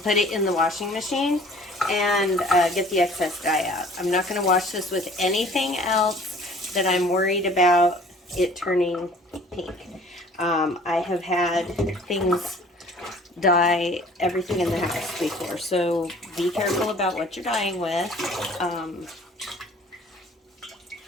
put it in the washing machine and get the excess dye out. I'm not going to wash this with anything else that I'm worried about it turning pink. I have had things dye everything in the house before, so be careful about what you're dyeing with.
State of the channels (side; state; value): both; normal; correlation 0.50